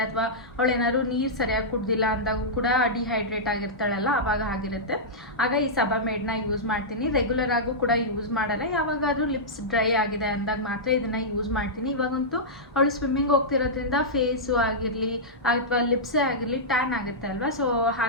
ಅಥವಾ ಅವಳೇನಾದ್ರು ನೀರು ಸರಿಯಾಗಿ ಕುಡ್ದಿಲ್ಲ ಅಂದಾಗೂ ಕೂಡ ಡಿಹೈಡ್ರೇಟ್ ಆಗಿರ್ತಾಳಲ್ಲ, ಆವಾಗ ಆಗಿರುತ್ತೆ. ಆಗ ಈ ಸಬಾಮೇಡ್ನ ಯೂಸ್ ಮಾಡ್ತೀನಿ. ರೆಗ್ಯುಲರ್ ಆಗೂ ಕೂಡ ಯೂಸ್ ಮಾಡಲ್ಲ, ಯಾವಾಗಾದರೂ ಲಿಪ್ಸ್ ಡ್ರೈ ಆಗಿದೆ ಅಂದಾಗ ಮಾತ್ರ ಇದನ್ನು ಯೂಸ್ ಮಾಡ್ತೀನಿ. ಇವಾಗಂತೂ ಅವಳು ಸ್ವಿಮ್ಮಿಂಗ್ ಹೋಗ್ತಿರೋದ್ರಿಂದ ಫೇಸು ಆಗಿರಲಿ ಅಥವಾ ಲಿಪ್ಸೇ ಆಗಿರಲಿ ಟ್ಯಾನ್ ಆಗುತ್ತೆ ಅಲ್ವಾ. ಸೊ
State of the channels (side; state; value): both; normal; correlation -0.12